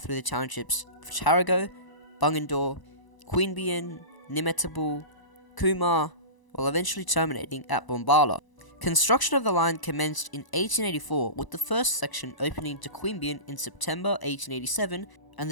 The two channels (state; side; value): late; right; 1.0 ms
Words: through the townships of Tarago, Bunyan, Queanbeyan, Nimmetabel, Cooma, while eventually terminating at Bombala. Construction of the line commenced in 1884, with the first section opening to Queanbeyan in September 1887 and